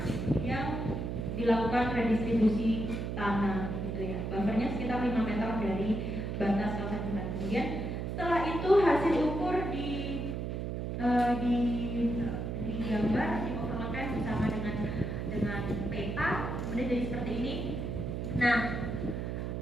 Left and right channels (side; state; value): right; noise; hum, 3 dB below the sound